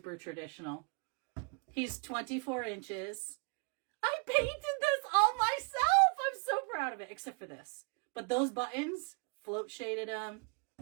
traditional. He's 24 inches. I painted this all myself. I'm so proud of it, except for this. But those buttons, float shaded them.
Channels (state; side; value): quieter; left; 35.0 dB